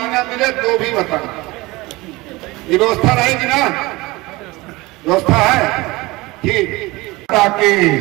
न मिले तो भी बताना। ये व्यवस्था रहेगी ना? व्यवस्था है? ठीक। माता की,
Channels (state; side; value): quieter; left; 21.7 dB